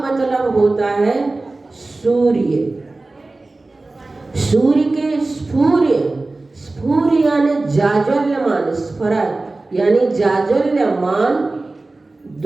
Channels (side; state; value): left; quieter; 3.2 dB